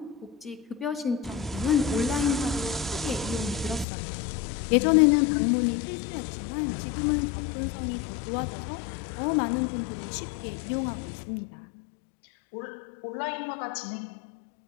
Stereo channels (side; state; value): right; drops out; at 3.9 s